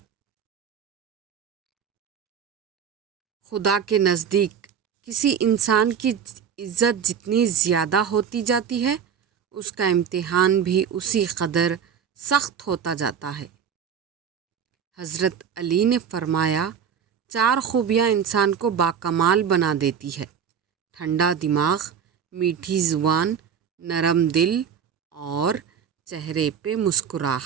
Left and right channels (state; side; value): quieter; left; 7.7 dB